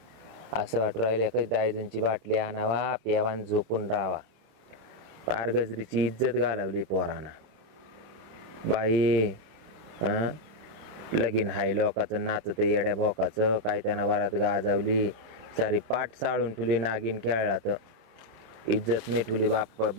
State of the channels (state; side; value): late; left; 26 ms